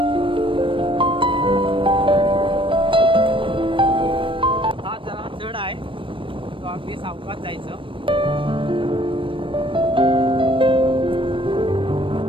हा जरा चढ आहे, तो अगदी सावकाश जायचं.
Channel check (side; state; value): left; late; 0.25 ms